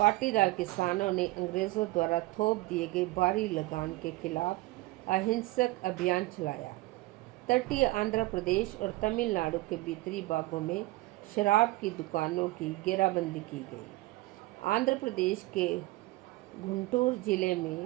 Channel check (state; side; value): quieter; left; 19.8 dB